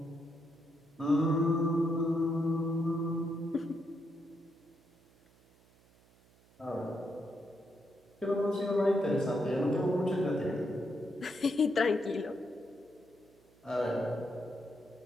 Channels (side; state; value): right; noise; hum, 29 dB below the sound